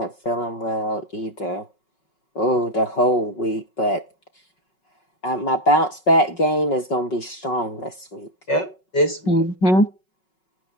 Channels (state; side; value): late; right; 5.4 ms